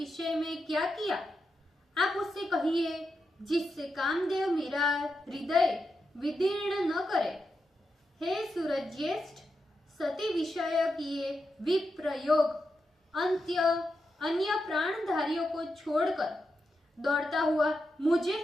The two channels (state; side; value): normal; both; correlation 0.86